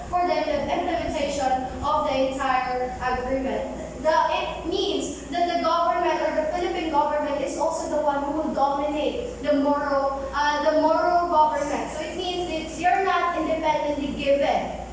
for the implementation of the entire agreement. It means that the government or the Philippine government is also the one who dominate the Moro government. So it means that they're not independently given.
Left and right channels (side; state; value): both; identical; correlation 1.00